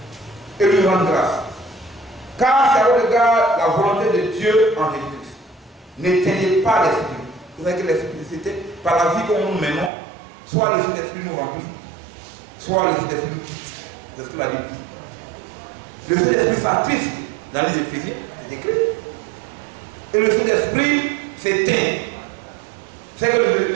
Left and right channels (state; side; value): drops out; left; at 9.9 s